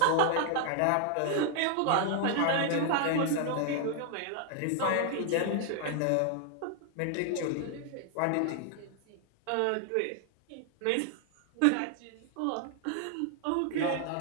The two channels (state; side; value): different; both; correlation 0.00